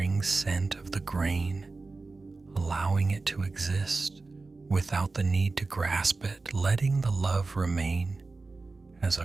scent of the grain, allowing it to exist without the need to grasp it, letting the love remain as a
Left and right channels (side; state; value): left; quieter; 3.7 dB